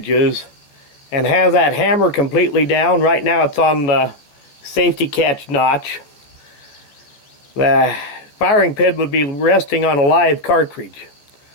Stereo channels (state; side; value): late; right; 14 ms